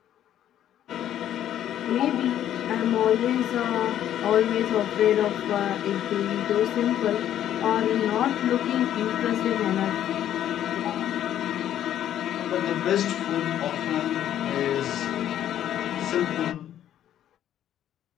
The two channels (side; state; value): right; quieter; 11.2 dB